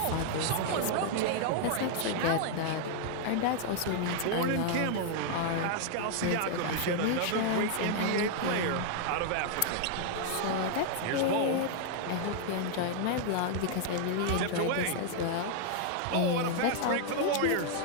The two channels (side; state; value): both; different; correlation 0.00